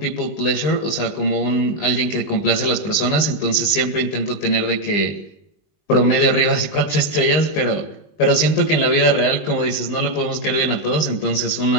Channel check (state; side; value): late; right; 20 ms